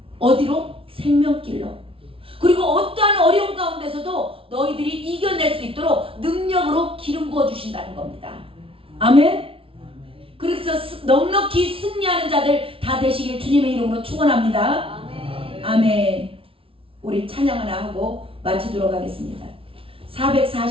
어디로? 생명길로. 그리고 어떠한 어려움 가운데서도 너희들이 이겨낼 수 있도록 능력으로 기름 부어 주신다는 겁니다. 아멘. 그래서 넉넉히 승리하는 자들 다 되시길 주님의 이름으로 축원합니다. 아멘. 아멘. 우리 찬양 하나 하고 마치도록 하겠습니다.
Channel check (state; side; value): late; left; 0.26 ms